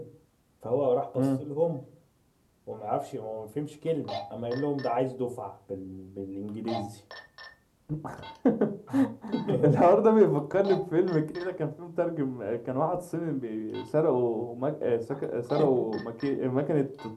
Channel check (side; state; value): both; identical; correlation 1.00